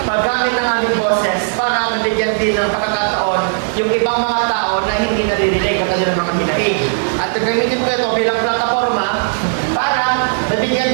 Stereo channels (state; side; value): silent; left; 69 dB below the other